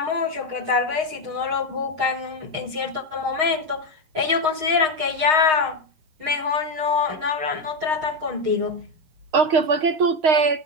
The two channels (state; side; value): late; left; 6.4 ms